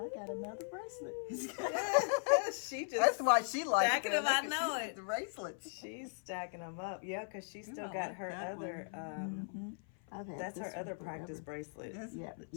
got another bracelet. She just That's why she likes stacking it. them, I Look at know she- it. The bracelets. she's stacking them up. Yeah, because she still I got like her that other. Mm-hmm. I've had That's this her one other forever. practice bracelet. Yes. Yeah, that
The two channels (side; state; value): right; silent; 52 dB below the other